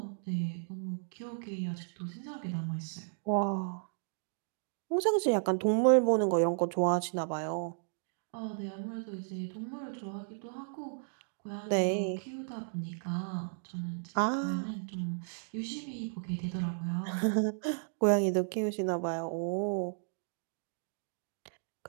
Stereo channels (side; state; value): left; silent; digital silence